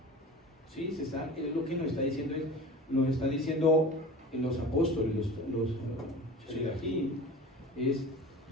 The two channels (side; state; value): both; normal; correlation 0.37